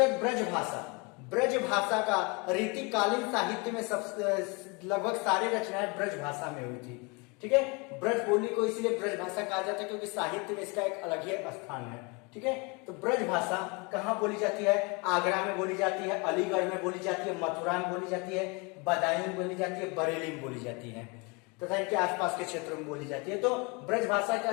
बाद ब्रज भाषा। ब्रज भाषा का रीतिकालीन साहित्य में सब लगभग सारी रचनाएं ब्रज भाषा में हुई थी। ठीक है। ब्रज बोली को इसलिए ब्रज भाषा कहा जाता है क्योंकि साहित्य में इसका एक अलग ही स्थान है। ठीक है, तो ब्रज भाषा कहाँ बोली जाती है? आगरा में बोली जाती है, अलीगढ़ में बोली जाती है, मथुरा में बोली जाती है, बदायूं में बोली जाती है, बरेली में बोली जाती है तथा इनके आसपास के क्षेत्रों में बोली जाती है। तो ब्रज भाषा का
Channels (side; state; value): right; quieter; 29.8 dB